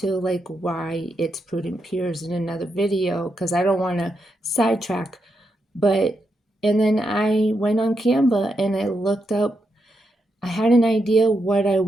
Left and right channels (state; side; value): normal; both; correlation 0.83